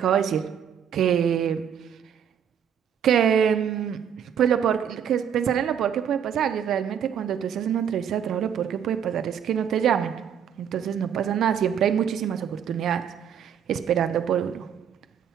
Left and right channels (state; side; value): quieter; left; 8.5 dB